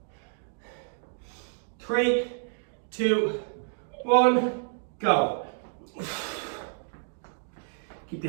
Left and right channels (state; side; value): silent; left; digital silence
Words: 3, 2, 1, go. Keep